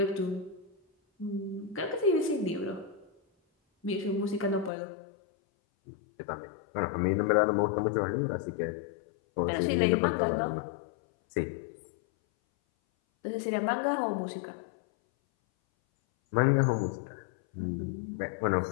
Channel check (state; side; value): drops out; right; at 4.7 s